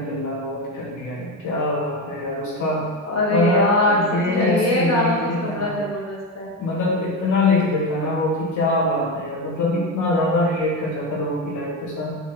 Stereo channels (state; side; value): normal; both; correlation 0.16